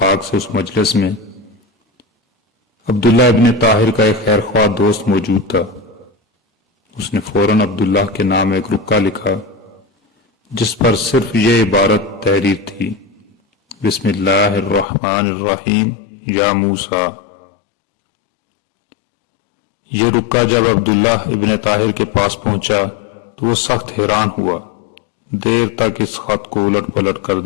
سے اس مجلس میں عبداللہ ابن طاہر کا ایک خیر خواہ دوست موجود تھا۔ اس نے فوراً عبداللہ کے نام ایک رکا لکھا جس پر صرف یہ عبارت تحریر تھی: بسم اللہ الرحمن الرحیم یا موسیٰ۔ یہ رکا جب عبداللہ ابن طاہر کے پاس پہنچا تو وہ سخت حیران ہوا، دیر تک اس خط کو الٹ پلٹ کر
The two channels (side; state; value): right; drops out; at 14.9 s